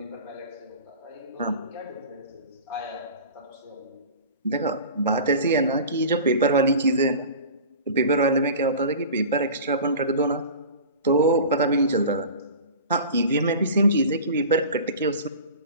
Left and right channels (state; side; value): inverted; both; correlation -0.37